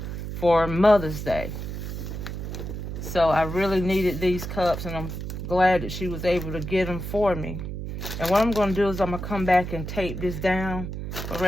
for Mother's Day. So I really needed these cups, and I'm glad that she was able to get them for me. And what I'm going to do is I'm going to come back and tape this down. But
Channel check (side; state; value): right; noise; hum, 6 dB below the sound